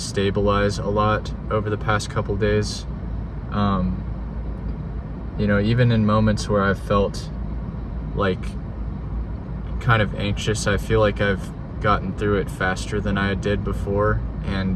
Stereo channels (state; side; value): identical; both; correlation 1.00